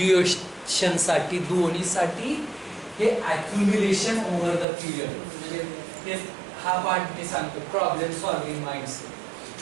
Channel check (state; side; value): drops out; left; at 4.7 s